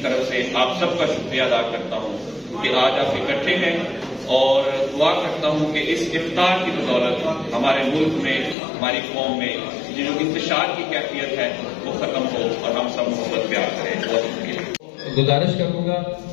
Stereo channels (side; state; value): right; drops out; at 8.6 s